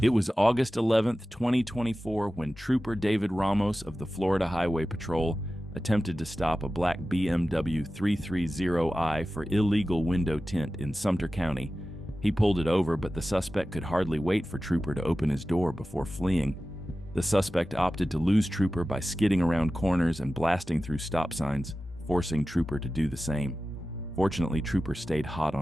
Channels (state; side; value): normal; both; correlation 0.95